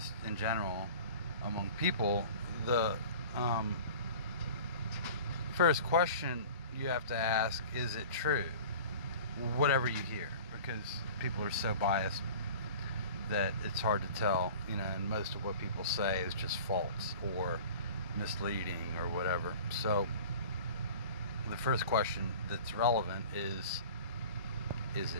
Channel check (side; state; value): both; inverted; correlation -0.41